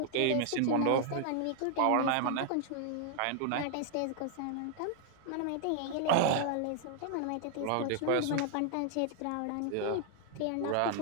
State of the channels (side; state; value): both; different; correlation 0.00